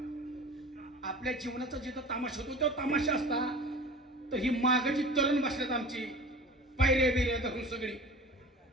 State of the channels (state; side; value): normal; both; correlation 0.38